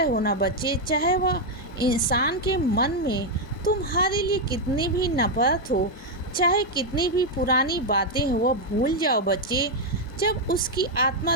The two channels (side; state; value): both; normal; correlation 0.01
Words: हो ना बच्चे, चाहे वह इंसान के मन में तुम्हारे लिए कितनी भी नफरत हो, चाहे कितनी भी पुरानी बातें हो, वह भूल जाओ बच्चे। जब उसकी